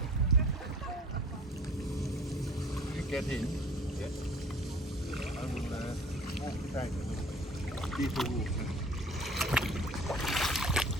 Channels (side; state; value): both; normal; correlation 0.48